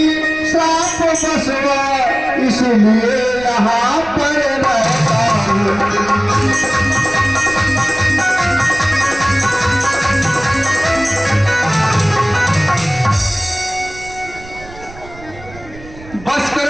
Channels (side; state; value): right; noise; rumble, 18 dB below the sound